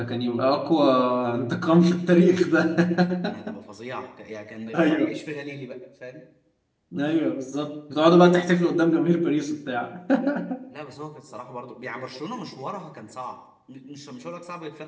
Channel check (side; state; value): both; identical; correlation 1.00